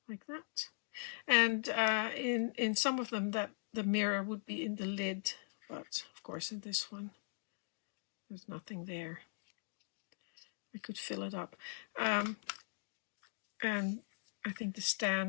like that. And in some of them that the mirror would be in the lid, but of course in this one there's nothing there. I could fill it up. And I think the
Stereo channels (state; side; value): silent; right; digital silence